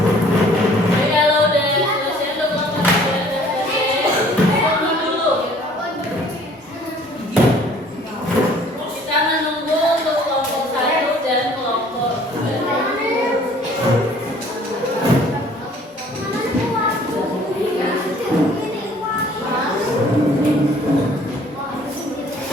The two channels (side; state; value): both; normal; correlation 0.55